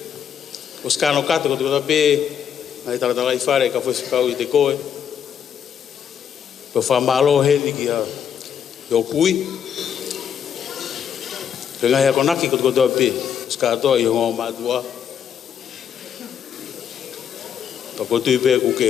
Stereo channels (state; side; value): quieter; right; 8.3 dB